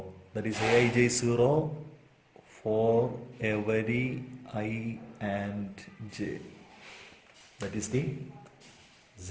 That is, Aij is 0 for every I and j. That is the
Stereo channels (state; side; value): identical; both; correlation 1.00